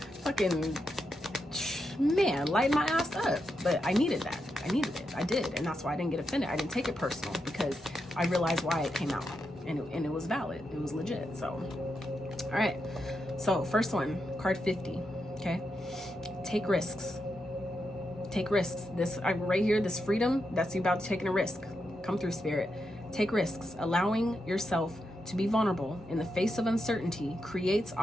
fucking, man, light my ass up. But I needed that. I needed it. I did, and that's why I didn't get offended. I didn't take it personal because I realized why it came out, and it was valid. It was legit. So, all right. So first one, card 50. Okay, take risks. Take risks. This right here, this freedom, that's you about taking a risk. Come through, Spirit. Take risks. Allowing yourself to be vulnerable in the face of uncertainty creates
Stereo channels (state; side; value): normal; both; correlation 0.85